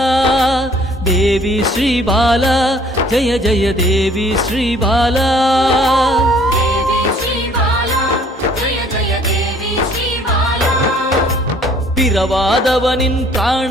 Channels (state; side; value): normal; both; correlation 0.57